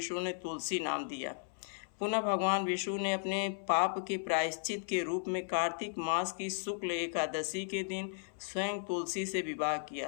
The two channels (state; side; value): silent; right; 54 dB below the other